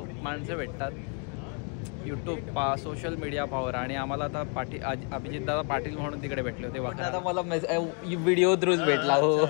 माणसं भेटतात यूट्यूब सोशल मीडिया पॉवर. आणि आम्हाला आता अभिजित दादा पाटील म्हणून तिकडे भेटले होते. आता मला व्हिडिओ थ्रूच भेटला. हो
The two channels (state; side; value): quieter; right; 39.2 dB